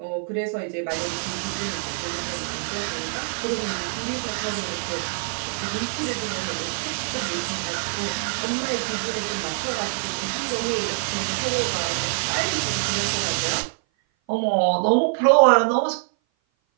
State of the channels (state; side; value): silent; left; 57 dB below the other